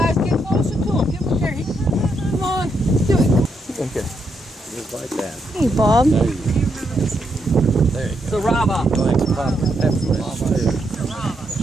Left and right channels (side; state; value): both; normal; correlation 0.79